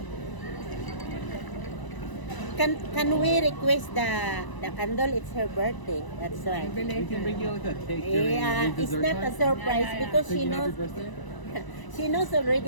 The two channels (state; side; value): late; right; 1.0 ms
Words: Can we request the candle? It's her birthday. That's why. We can bring you like a cake during Yeah, the it's dessert not a time. surprise because she Singing knows happy birthday. she knows